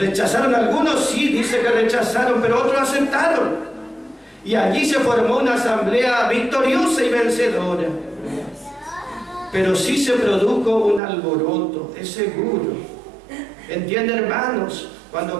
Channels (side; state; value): left; drops out; at 11.0 s